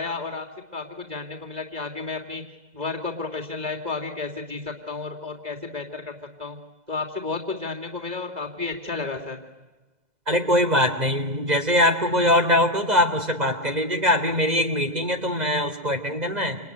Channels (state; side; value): late; left; 2.0 ms